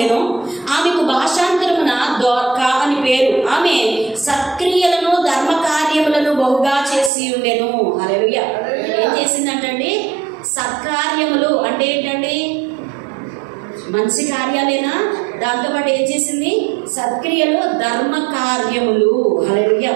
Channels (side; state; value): left; drops out; at 7.1 s